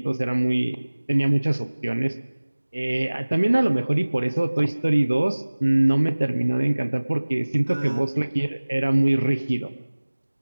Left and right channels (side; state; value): both; inverted; correlation -1.00